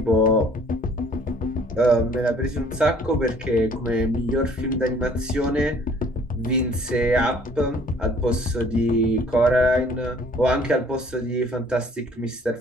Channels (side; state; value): both; normal; correlation 0.56